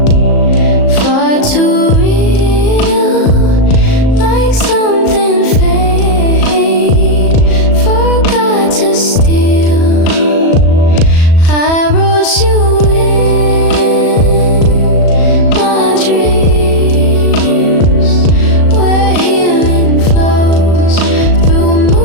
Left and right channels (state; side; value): late; right; 37 ms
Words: far too real, like something fate forgot to steal. I wrote you in my dreams, where healing flows through